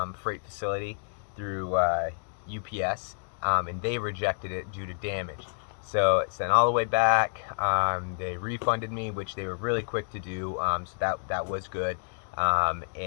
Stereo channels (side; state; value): right; silent; digital silence